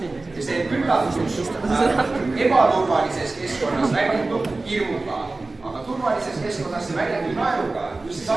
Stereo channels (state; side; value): quieter; left; 3.3 dB